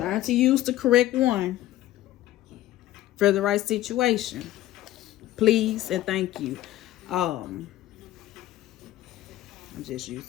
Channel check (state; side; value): quieter; right; 14.5 dB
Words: to use the correct one for the right situation. Please and thank you. I'm just